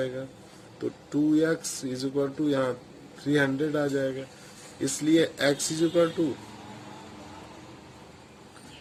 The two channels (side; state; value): both; identical; correlation 1.00